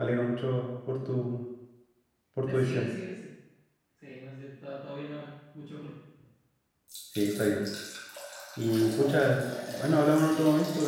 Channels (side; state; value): both; identical; correlation 1.00